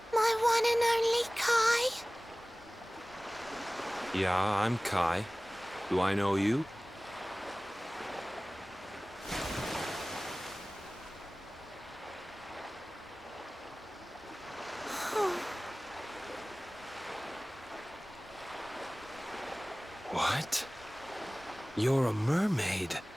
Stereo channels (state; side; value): normal; both; correlation 0.98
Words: My one and only Kai? Yeah, I'm Kai. Do I know you? What? You're a mermaid.